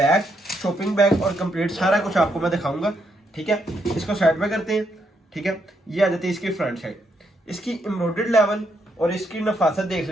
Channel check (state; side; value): normal; both; correlation 0.77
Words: शॉपिंग बैग और कंप्लीट सारा कुछ आपको मैं दिखाऊंगा। ठीक है, इसको साइड में करते हैं। ठीक है, ये आ जाती है इसकी फ्रंट साइड। इसकी एम्ब्रॉयडर्ड लेवल और इसकी नफासत देख